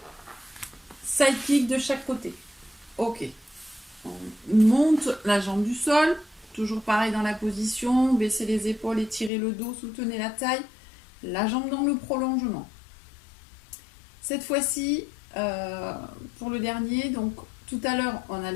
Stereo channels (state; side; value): drops out; right; at 9.3 s